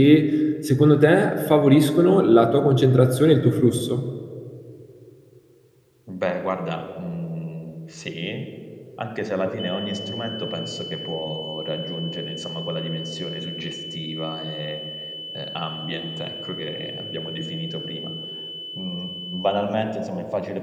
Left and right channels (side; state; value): both; identical; correlation 1.00